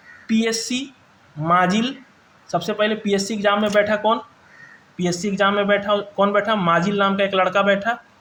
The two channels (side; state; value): both; identical; correlation 1.00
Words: PSC माजिल, सबसे पहले PSC एग्जाम में बैठा कौन, पीएससी एग्जाम में बैठा, कौन बैठा, माजिल नाम का एक लड़का बैठा,